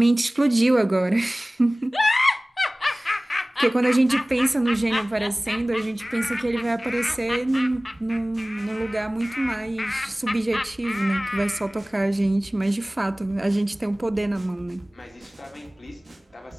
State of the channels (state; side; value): normal; both; correlation 0.98